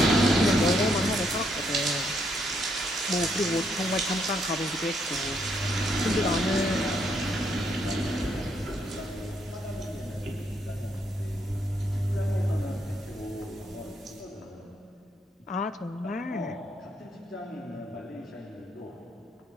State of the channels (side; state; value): both; normal; correlation 0.74